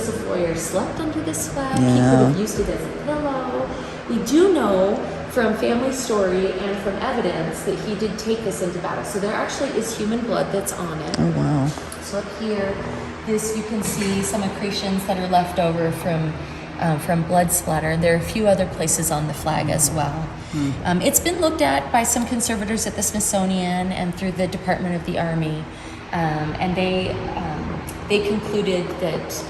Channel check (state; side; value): identical; both; correlation 1.00